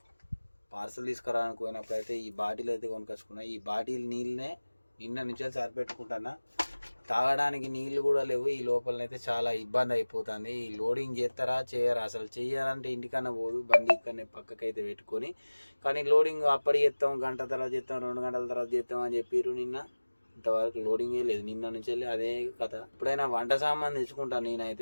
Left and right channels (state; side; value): inverted; both; correlation -1.00